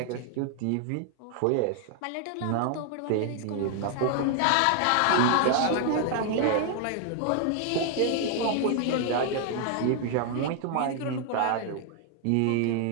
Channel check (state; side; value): different; both; correlation 0.00